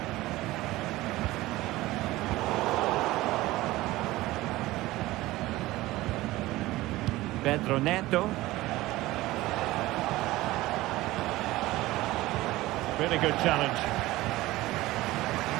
Pedro Neto. Really good challenge.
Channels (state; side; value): quieter; left; 18.1 dB